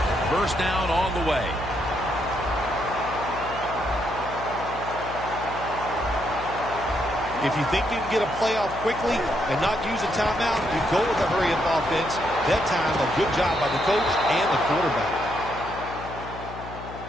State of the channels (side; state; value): left; noise; hum, 12 dB below the sound